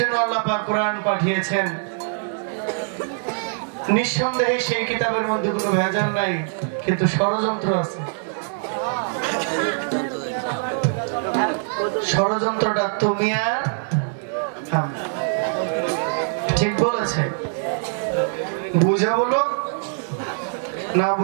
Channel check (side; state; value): left; silent; digital silence